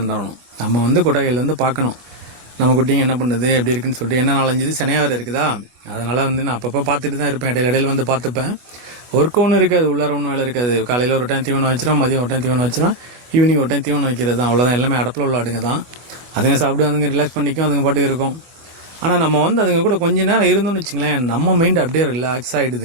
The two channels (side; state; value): left; late; 25 ms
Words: நம்ம வந்து கொட்டகையில் வந்து பார்க்கணும் நம்ம குட்டிங்க என்ன பண்ணுது எப்படி இருக்குன்னு சொல்லிட்டு. என்ன 4-5 இது சினையாக இருக்குதா, அதனால் வந்து நான் அப்பப்போ பார்த்துட்டு தான் இருப்பேன், இடையில வந்து பார்த்துப்பேன். ஒர்க் ஒன்றும் இருக்காது, உள்ளார ஒன்றும் வேலை இருக்காது. காலையில் ஒரு டைம் தீவனம் வச்சிடும், மதியம் ஒரு டைம் தீவனம் வச்சிடும், ஈவினிங் ஒரு டைம் தீவனம் வைக்கிறது தான், அவ்வளோதான். எல்லாமே அடப்பில் உள்ள ஆடுங்க தான். அதுங்க சாப்பிட்டு அதுங்க ரிலாக்ஸ் பண்ணிக்கும், அதுங்க பாட்டுக்கு இருக்கும். ஆனால் நம்ம வந்து அதுங்க கூட கொஞ்ச நேரம் இருந்தோம்னு வச்சுங்களேன், நம்ம மைண்டு அப்படியே ரிலாக்ஸ்